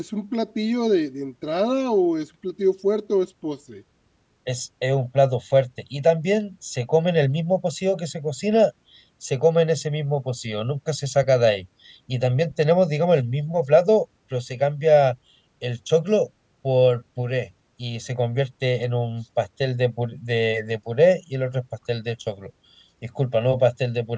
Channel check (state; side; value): identical; both; correlation 1.00